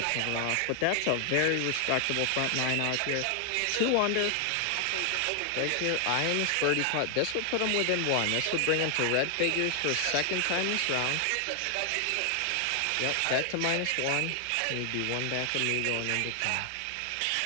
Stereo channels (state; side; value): different; both; correlation 0.00